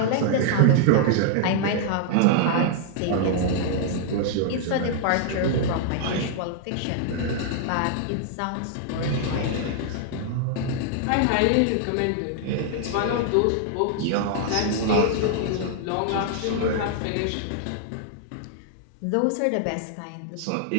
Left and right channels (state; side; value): different; both; correlation -0.01